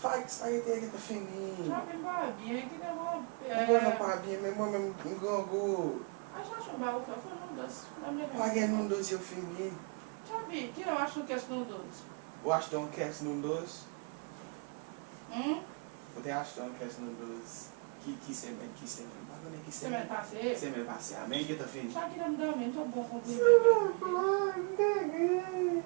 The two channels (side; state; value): left; quieter; 35.3 dB